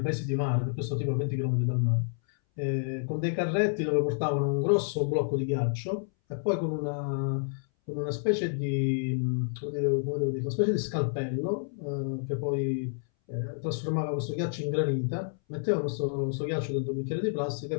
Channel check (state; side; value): silent; right; 58 dB below the other